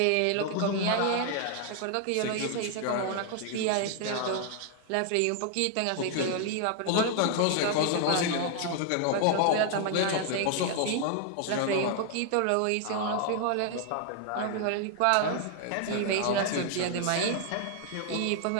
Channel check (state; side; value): different; both; correlation 0.00